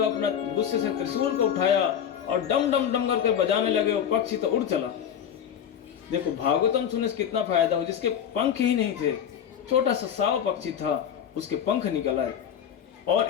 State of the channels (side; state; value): right; quieter; 8.9 dB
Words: अपना गुस्से से त्रिशूल को उठाया और डम डम डम करके बजाने लगे, वो पक्षी तो उड़ चला। देखो भागवतम सुनने से कितना फायदा हो, जिसके पंख ही नहीं थे, छोटा सा साव पक्षी था, उसके पंख निकल आए और